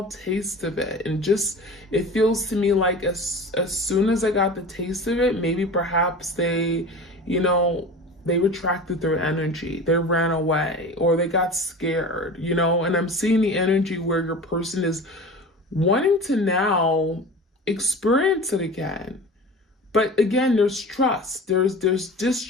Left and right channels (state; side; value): normal; both; correlation 0.35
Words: taste of it. And it feels to me like as soon as I got the taste of it, maybe perhaps they retracted their energy, they ran away, or they got scared, and I'm seeing the energy where your person is wanting to now experience it again. But again, there's trust, there's